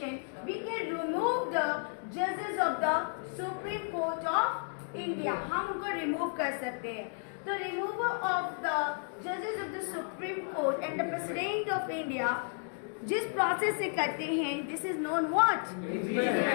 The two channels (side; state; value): right; silent; 56 dB below the other